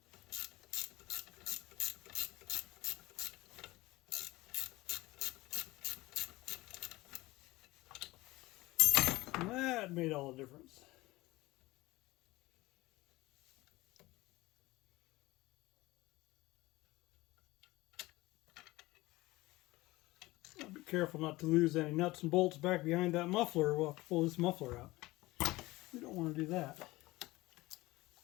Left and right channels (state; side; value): quieter; right; 19.9 dB